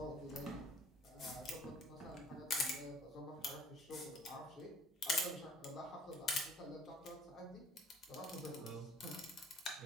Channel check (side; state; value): both; normal; correlation 0.54